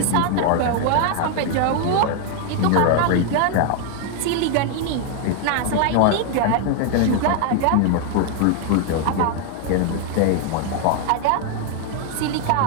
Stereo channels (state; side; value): different; both; correlation 0.00